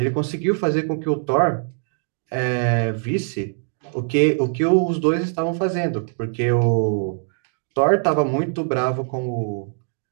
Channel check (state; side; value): silent; left; 60 dB below the other